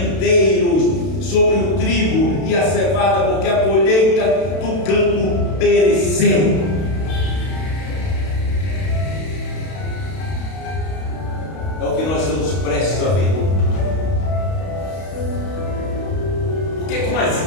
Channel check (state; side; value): late; right; 32 ms